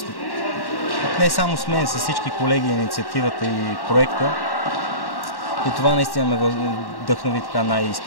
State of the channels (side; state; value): right; late; 1.1 ms